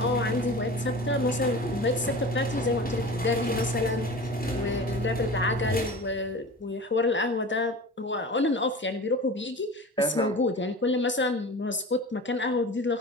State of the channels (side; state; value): both; normal; correlation 0.35